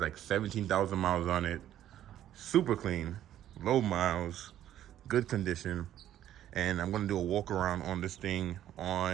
17,000 miles on it. Super clean, low miles, good condition. And I'm gonna do a walk around on this thing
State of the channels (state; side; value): quieter; left; 11.9 dB